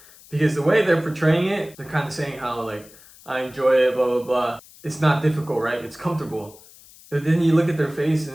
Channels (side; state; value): left; noise; hiss, 23 dB below the sound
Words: Because the way they're portraying it, they're kind of saying how like, I enjoy it, blah, blah, blah. It's not difficult, right? It's comfortable. But then you look at their face